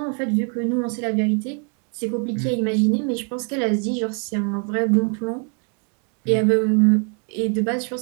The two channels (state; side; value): quieter; left; 38.1 dB